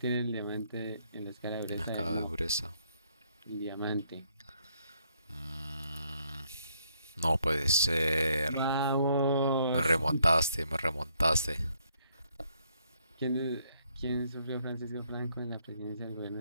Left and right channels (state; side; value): inverted; both; correlation -0.71